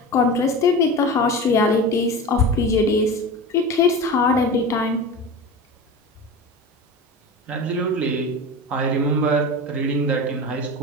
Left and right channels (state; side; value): normal; both; correlation 0.29